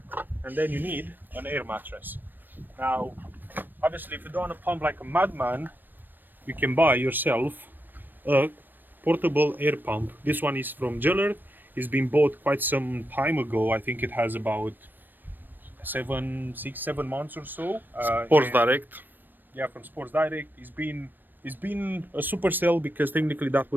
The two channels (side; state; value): left; late; 0.092 ms